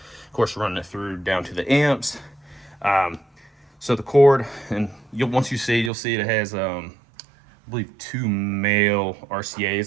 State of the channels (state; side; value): drops out; left; at 5.9 s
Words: course running it through down to the amps. So the cord, and once you see, you'll see it has I believe 2 male